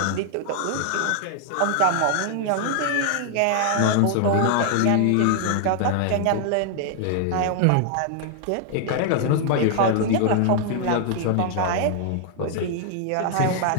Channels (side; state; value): both; different; correlation 0.00